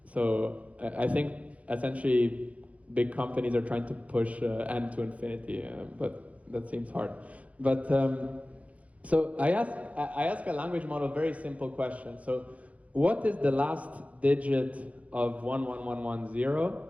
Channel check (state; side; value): late; left; 0.066 ms